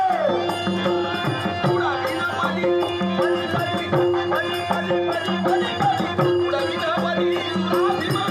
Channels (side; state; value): both; identical; correlation 1.00